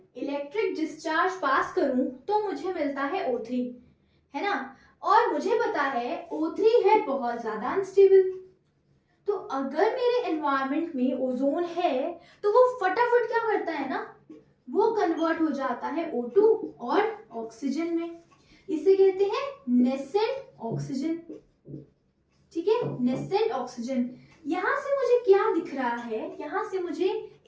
इलेक्ट्रिक डिस्चार्ज पास करूं तो मुझे मिलता है O3, है ना। और मुझे पता है O3 है बहुत ज्यादा अनस्टेबल। तो अगर मेरे एनवायरनमेंट में ओजोन है तो वो फटाफट क्या करता है ना, वो कन्वर्ट हो जाता है O2 और ऑक्सीजन में। इसे कहते हैं नेसेंट ऑक्सीजन। ठीक है, नेसेंट ऑक्सीजन। यहां से मुझे क्या दिख रहा है? यहां से मुझे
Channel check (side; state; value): both; identical; correlation 1.00